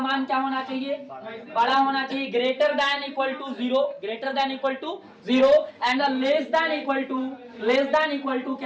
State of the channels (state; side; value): identical; both; correlation 1.00